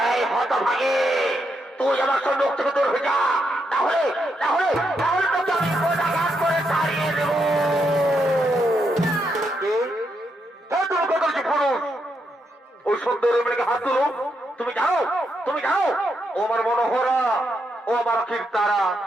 এই হত ভাগে, তুই আমার সঙ্গে মুখ থেকে দূর হয়ে যা, তাহলে তাহলে তাহলে তোকে আমি কোটাঘাত করে তাড়িয়ে দেব। তুমি কত পুরুষ, ওই সুন্দর মেয়েকে হাত তুলো। তুমি জানো ও আমার মনোহরা, ও আমার কীর্তারা,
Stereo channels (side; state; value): both; normal; correlation 0.81